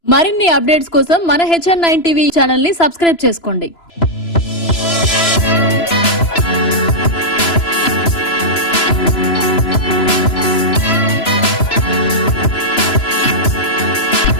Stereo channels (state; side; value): late; right; 3.0 ms